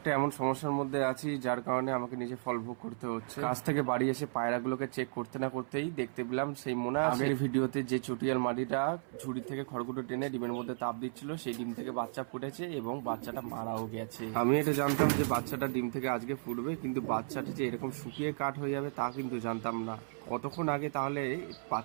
এমন সমস্যার মধ্যে আছি যার কারণে আমাকে নিজে ফল ভোগ করতে হচ্ছে। কাজ থেকে বাড়ি এসে পায়রাগুলোকে চেক করতে না করতেই দেখতে পেলাম সেই মনে আছে আগের ভিডিওতে যে চটিয়াল মাটিটা ঝুড়ি থেকে খড়গুটো টেনে ডিমের মধ্যে তাপ দিচ্ছিল, সেই ডিম থেকে বাচ্চা ফুটেছে এবং বাচ্চাটা মারাও গেছে। আমি এটা জানতাম যে বাচ্চাটা ডিম থেকে আজকে ফুটবে, কিন্তু বাচ্চাটা যে এরকম শুকিয়ে কাঠ হয়ে যাবে তা কিন্তু জানতাম না। কতক্ষণ আগে তাহলে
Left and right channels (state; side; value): silent; left; 55 dB below the other